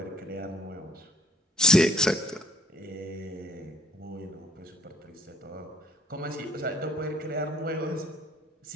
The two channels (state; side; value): normal; both; correlation 0.59